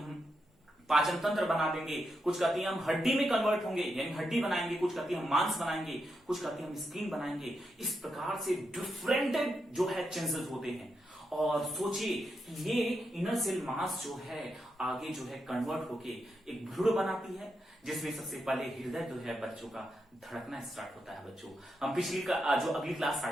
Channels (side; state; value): both; normal; correlation 0.84